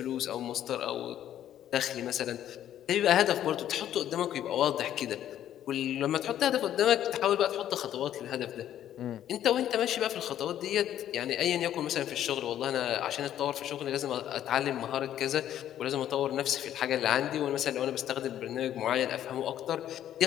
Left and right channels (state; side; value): quieter; right; 11.3 dB